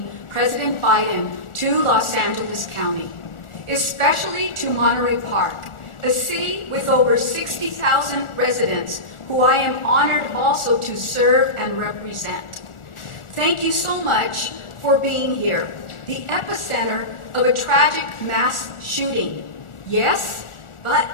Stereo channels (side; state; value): right; late; 1.4 ms